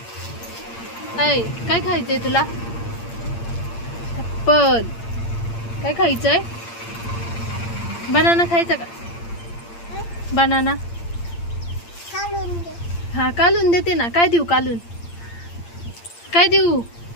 काय खायचंय तुला? ऍपल. काय खायचंय? बनाना खायचा का? बनाना हा, कालून देते ना. काय देऊ कालून? काय देऊ?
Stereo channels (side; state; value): right; late; 8.7 ms